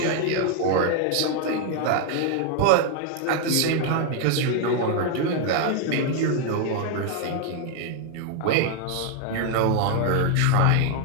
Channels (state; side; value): different; both; correlation 0.00